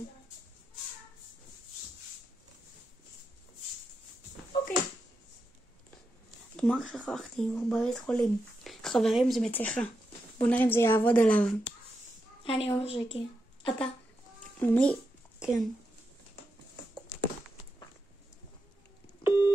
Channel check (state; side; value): normal; both; correlation 0.86